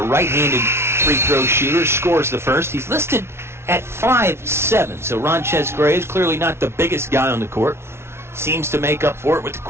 right-handed free throw shooter, scores the first. He's listed at 5'7", so Ronchez Graves, clearly not the biggest guy on the court, seems to make up for it with the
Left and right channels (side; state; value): left; late; 0.12 ms